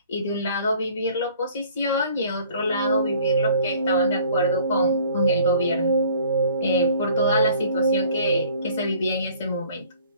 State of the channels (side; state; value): both; inverted; correlation -0.53